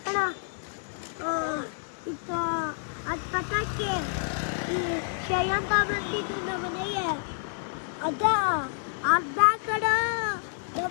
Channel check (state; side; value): silent; right; digital silence